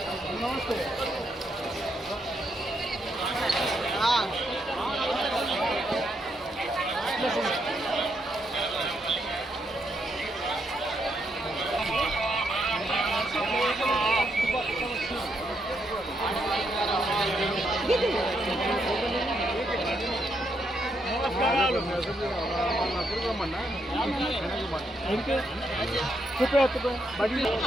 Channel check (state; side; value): normal; both; correlation 0.78